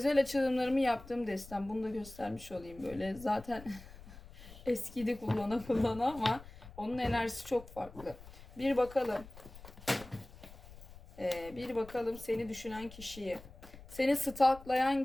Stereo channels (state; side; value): noise; left; rumble, 18 dB below the sound